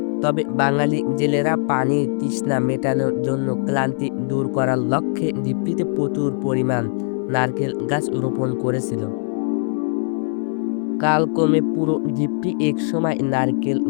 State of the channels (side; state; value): right; silent; digital silence